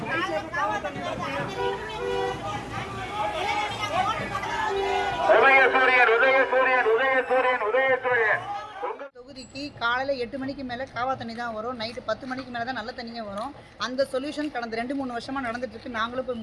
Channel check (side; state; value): both; identical; correlation 1.00